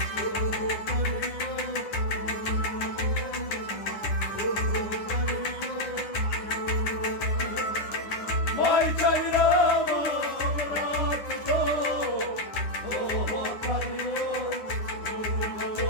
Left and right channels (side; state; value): right; late; 9.8 ms